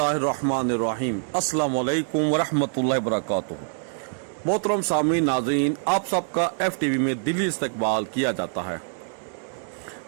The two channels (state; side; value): silent; left; 59 dB below the other